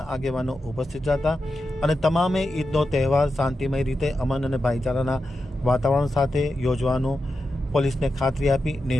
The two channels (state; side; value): normal; both; correlation 0.89